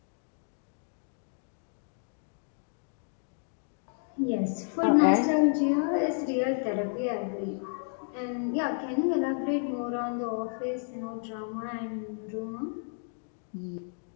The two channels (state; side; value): silent; right; 57 dB below the other